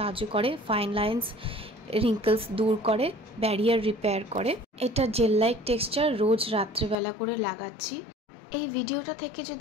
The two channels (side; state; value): right; drops out; at 7.0 s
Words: করে, ফাইন লাইন্স, রিঙ্কলস দূর করে, ব্যারিয়ার রিপেয়ার করে। এটা জেল লাইক টেক্সচার, রোজ রাত্রেবেলা করে লাগাচ্ছি। এই ভিডিওটা থেকে